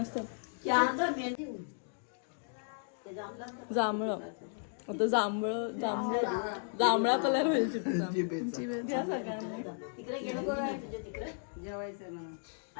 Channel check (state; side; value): silent; right; digital silence